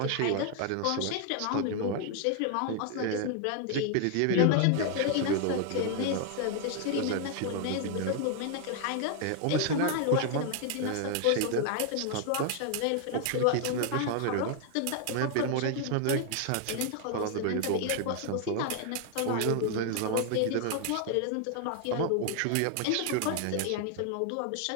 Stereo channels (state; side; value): different; both; correlation 0.00